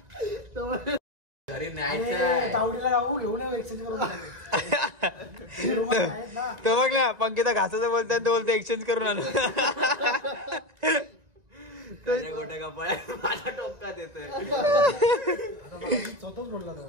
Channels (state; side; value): late; left; 1.9 ms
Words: घरी न्यायचं तो बघ ना पंकिता घासाचं बोलतात तो बोलतो एक्सचेंज करून आणू गोट्या कपाळ माझ्या टोपकात येतोय.